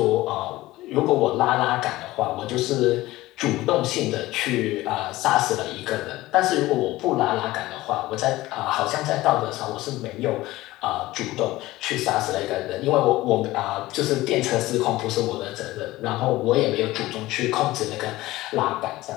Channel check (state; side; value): quieter; right; 17.8 dB